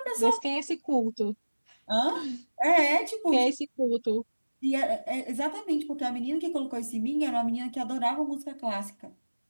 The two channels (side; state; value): both; inverted; correlation -1.00